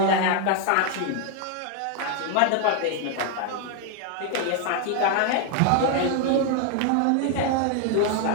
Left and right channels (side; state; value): both; different; correlation 0.00